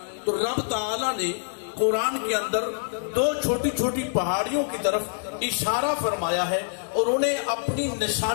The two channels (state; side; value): silent; right; digital silence